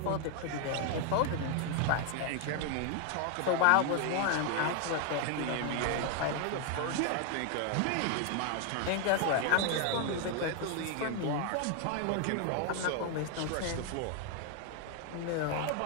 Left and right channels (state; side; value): different; both; correlation 0.01